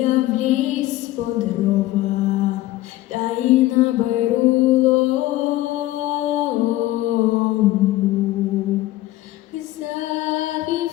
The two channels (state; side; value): quieter; right; 16.3 dB